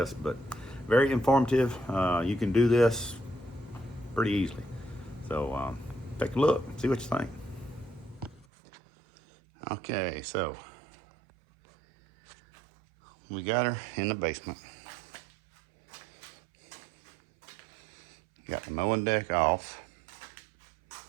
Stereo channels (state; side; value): drops out; left; at 8.5 s